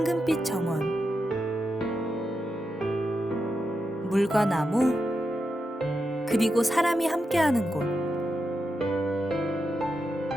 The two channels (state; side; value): normal; both; correlation 0.87